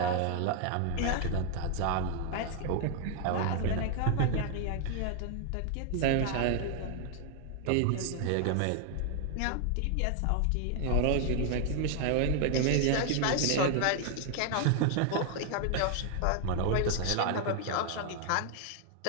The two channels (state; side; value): different; both; correlation 0.00